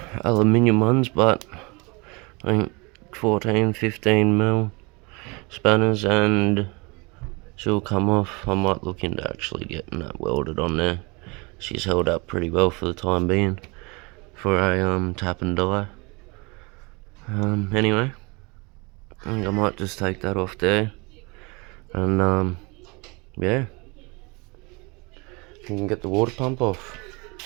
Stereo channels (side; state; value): left; quieter; 28.3 dB